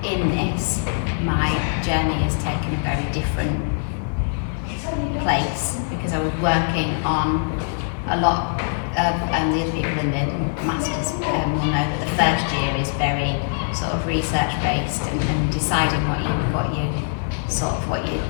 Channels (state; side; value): silent; right; 55 dB below the other